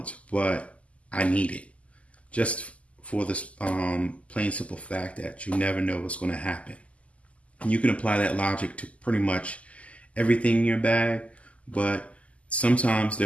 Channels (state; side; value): late; right; 0.065 ms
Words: but I need it. Just for this plain simple fact that you never know what's going to happen. And you can apply that logic to pretty much everything in your bag, but sometimes